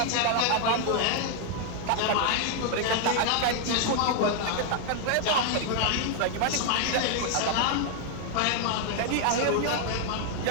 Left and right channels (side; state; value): both; different; correlation 0.00